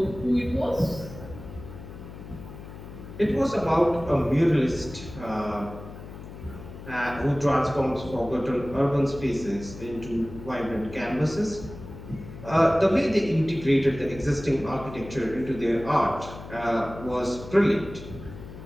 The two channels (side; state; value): left; noise; hum, 13 dB below the sound